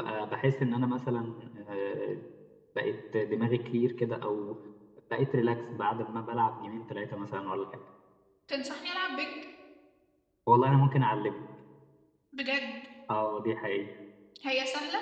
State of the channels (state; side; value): identical; both; correlation 1.00